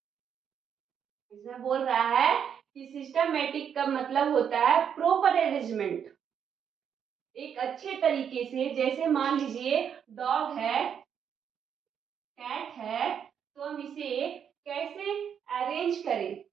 इसमें बोल रहा है कि सिस्टमैटिक का मतलब होता है प्रॉपर अरेंजमेंट, एक अच्छे तरीके से। जैसे मान लीजिए डॉग है, कैट है, तो हम इसे कैसे अरेंज करें,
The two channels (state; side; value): quieter; left; 8.0 dB